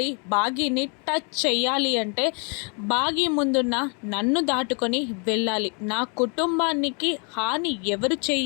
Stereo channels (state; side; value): quieter; right; 36.1 dB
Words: బాగీని టచ్ చెయ్యాలి అంటే బాగీ ముందున్న నన్ను దాటుకొని వెళ్ళాలి. నా కుటుంబానికి హాని ఎవరు